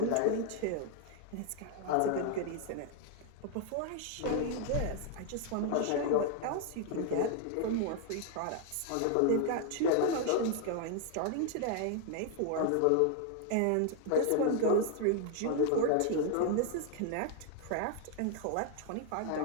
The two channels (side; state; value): both; different; correlation 0.00